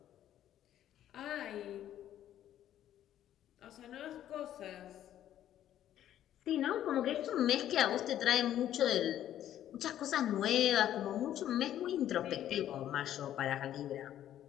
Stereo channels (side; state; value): right; quieter; 11.6 dB